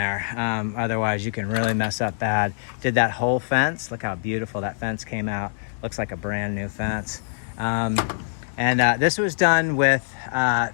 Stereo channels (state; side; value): silent; right; digital silence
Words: Otherwise, you can really mess up bad. Did that whole fence. Look how beautiful that fence came out. Looks like a brand new fence. And this was done with